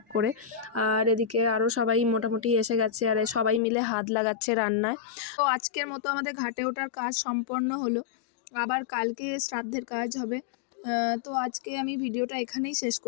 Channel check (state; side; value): drops out; right; at 3.6 s